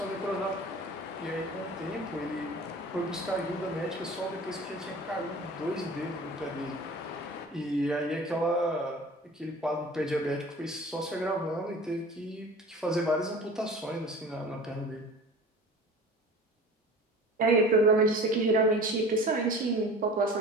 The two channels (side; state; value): both; normal; correlation 0.41